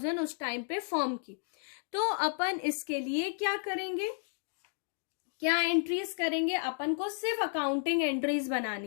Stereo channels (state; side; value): silent; right; 56 dB below the other